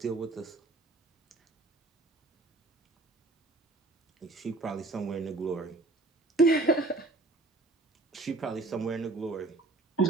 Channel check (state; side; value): quieter; left; 3.2 dB